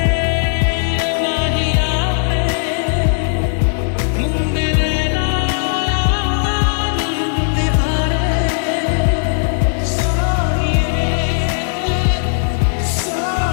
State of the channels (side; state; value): right; silent; digital silence